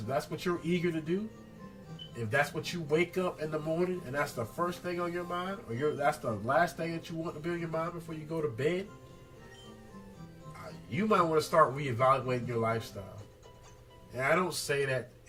you're eager to do, if that's what you wake up in the morning and that's the first thing on your mind, or that's the last thing that you want to be on your mind before you go to bed, you might want to start reevaluating your lifestyle. And I don't say that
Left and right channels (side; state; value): both; identical; correlation 1.00